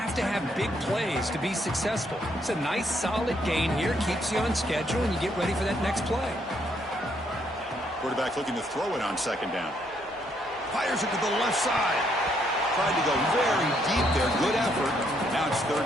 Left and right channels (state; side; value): normal; both; correlation 0.72